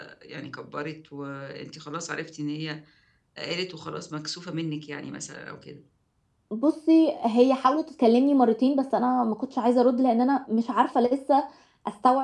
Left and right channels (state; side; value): identical; both; correlation 1.00